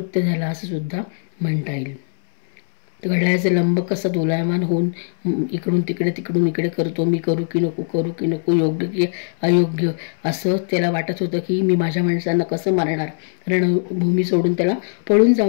झाला असं सुद्धा म्हणता येईल. घड्याळाचे लंब कसा दोलायमान होऊन इकडून तिकडे तिकडून इकडे करतो, मी करू की नको, योग्य की अयोग्य असं त्याला वाटत होतं की मी माझ्या माणसांना कसं मारणार, रणभूमी सोडून त्याला पळून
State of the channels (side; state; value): right; silent; 65 dB below the other